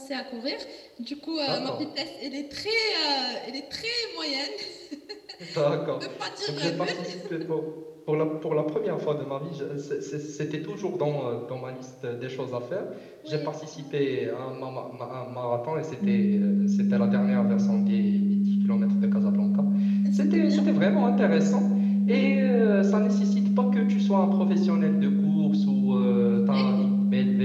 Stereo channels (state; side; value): identical; both; correlation 1.00